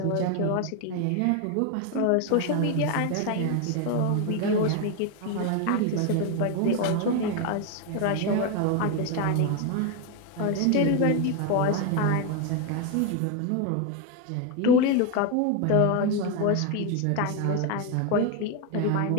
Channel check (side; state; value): both; different; correlation 0.02